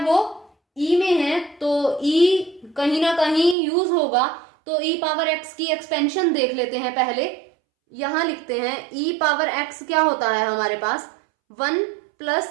वो ई में है तो ई कहीं ना कहीं यूज होगा, तो ई पावर एक्स की एक्सपेंशन देख लेते हैं पहले। यहां लिखते हैं ई पावर एक्स क्या होता है हमारे पास, 1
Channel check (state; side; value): drops out; left; at 3.6 s